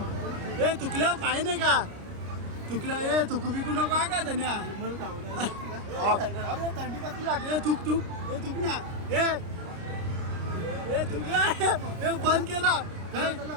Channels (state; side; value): late; left; 30 ms